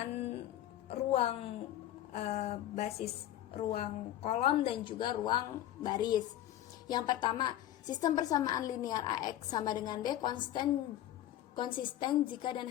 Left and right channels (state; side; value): quieter; right; 12.7 dB